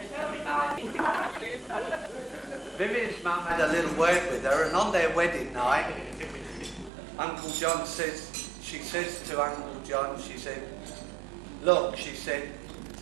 had a little word with her, and on their wedding night, Uncle John she says to Uncle John, she said, look, she said,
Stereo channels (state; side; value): drops out; left; at 6.9 s